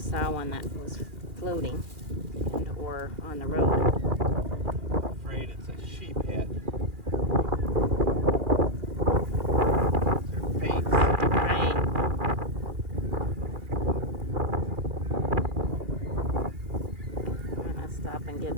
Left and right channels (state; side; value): late; left; 2.4 ms